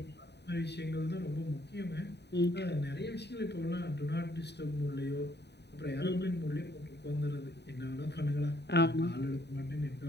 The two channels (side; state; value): right; late; 0.49 ms